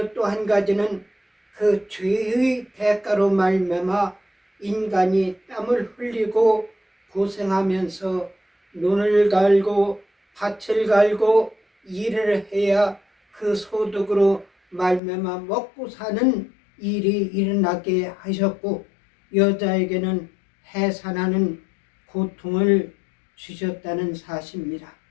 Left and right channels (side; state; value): right; drops out; at 15.0 s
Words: 또 한 가지는 그 죄의 대가로 말미암아 인간이 땀을 흘리고 고생하면서 눈을 갈고 밭을 갈고 일을 해야 그 소득으로 말미암아 먹고 사는 일이 일어나게 하셨고, 여자에게는 해산하는 고통을 주셨다는 사실입니다.